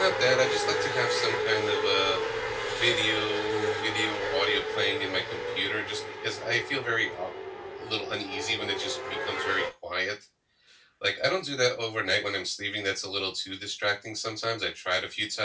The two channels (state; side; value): identical; both; correlation 1.00